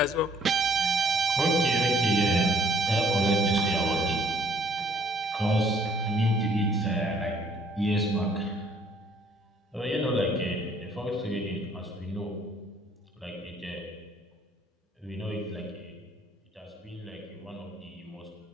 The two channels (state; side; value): normal; both; correlation 0.62